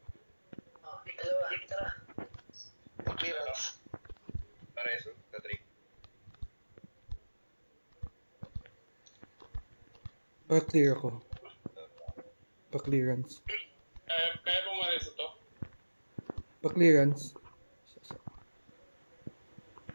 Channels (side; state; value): both; inverted; correlation -1.00